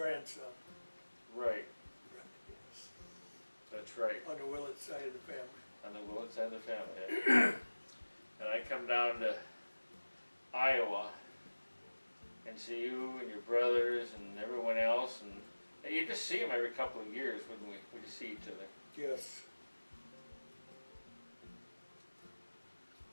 Right, Yes. that's right. On the Willits side of the family. On the Willits side of the family. And I come down to Iowa and see you and your brothers and everyone else, and you just see them every couple of years, wouldn't we? We just see each other. Yes.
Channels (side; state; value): both; inverted; correlation -1.00